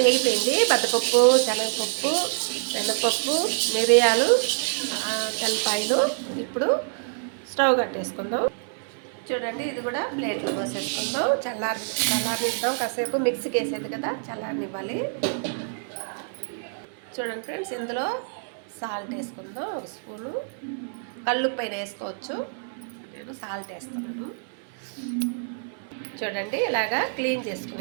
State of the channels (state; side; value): silent; left; 61 dB below the other